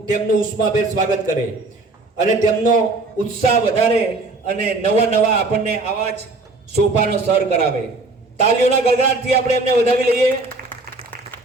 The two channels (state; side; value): quieter; left; 3.3 dB